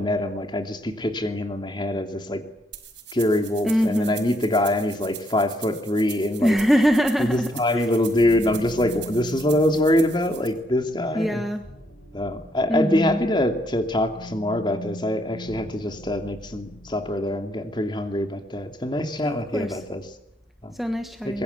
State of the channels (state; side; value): normal; both; correlation 0.72